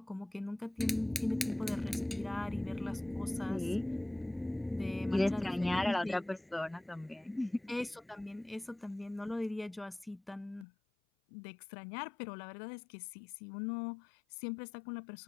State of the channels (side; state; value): right; drops out; at 10.7 s